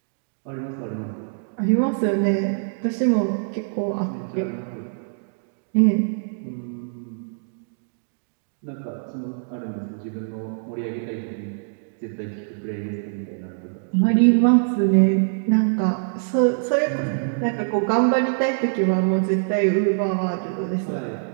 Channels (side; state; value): left; silent; digital silence